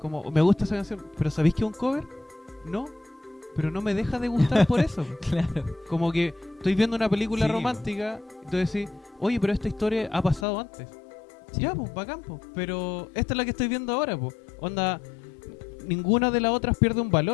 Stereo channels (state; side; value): drops out; right; at 10.5 s